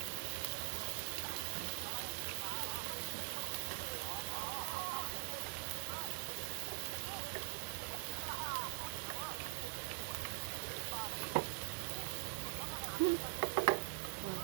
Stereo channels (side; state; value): left; silent; digital silence